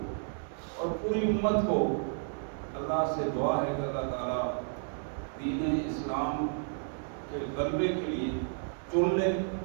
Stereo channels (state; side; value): silent; left; digital silence